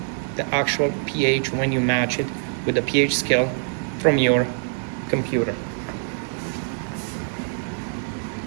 the actual pH when you match it with the pH scale from your computer.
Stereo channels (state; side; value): silent; left; 61 dB below the other